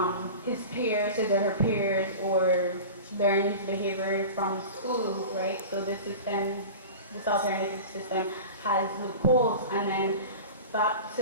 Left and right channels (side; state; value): both; inverted; correlation -0.33